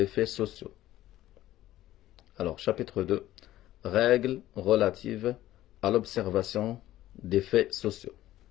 faits sociaux. Alors, chapitre 2. Règles relatives à l'observation des faits sociaux.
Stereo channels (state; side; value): quieter; right; 14.5 dB